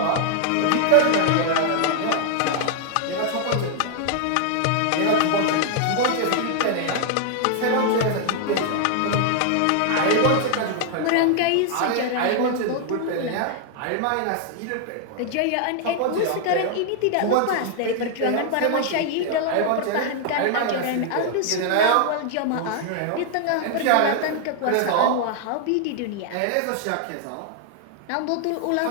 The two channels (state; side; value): different; both; correlation 0.00